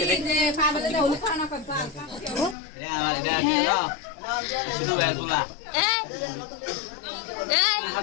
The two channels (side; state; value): right; drops out; at 2.6 s